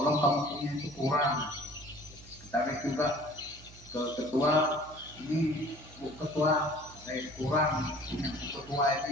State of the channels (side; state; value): right; noise; hum, 20 dB below the sound